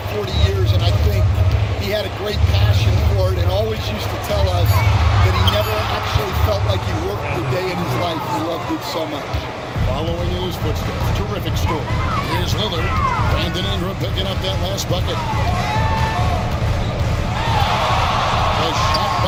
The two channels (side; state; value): both; identical; correlation 1.00